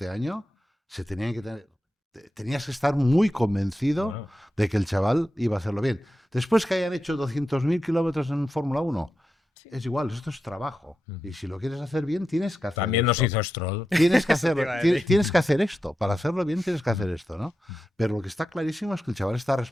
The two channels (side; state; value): both; normal; correlation 0.89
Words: año, tenías que estar muy convencido Bueno. de que el chaval iba a hacerlo bien. Después que hayan hecho 200.000 kilómetros en Fórmula 1, es igual, esto es trabajo. Ujú. Y si lo quieres hacer bien, tienes que hacer También nos esto. hizo Stroll. Tienes que, Eso te iba a hacer, decir. tienes que hacer esto. Para hacerlo bien tienes que hacer esto, ¿no? Pero lo que está clarísimo es que el chaval está